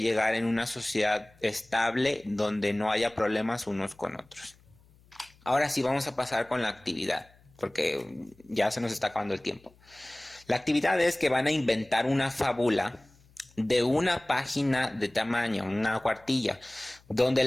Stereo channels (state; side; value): noise; left; hum, 29 dB below the sound